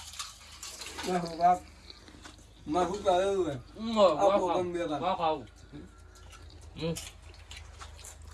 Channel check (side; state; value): both; identical; correlation 1.00